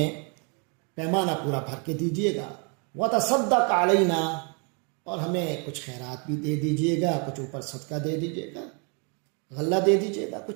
پیمانہ پورا بھر کے دیجیے گا۔ وتصدق علینا، اور ہمیں کچھ خیرات بھی دے دیجیے گا، کچھ اوپر صدقہ دے دیجیے گا، غلہ دے دیجیے گا،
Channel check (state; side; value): quieter; left; 36.8 dB